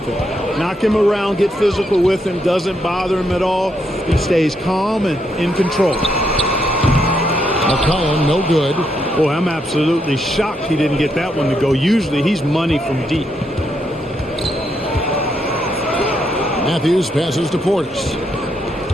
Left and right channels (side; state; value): both; normal; correlation 0.78